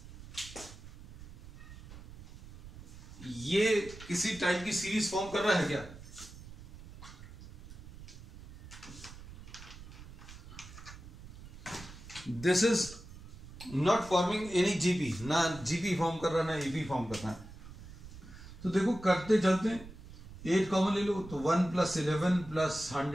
ये किसी टाइप की सीरीज फॉर्म कर रहा है क्या? This is not forming any GP, ना जीपी फॉर्म कर रहा है ना एपी फॉर्म कर रहा है। तो देखो करते चलते हैं, 8 कॉमन ले लो तो 1 + 11 +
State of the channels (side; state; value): right; noise; rumble, 16 dB below the sound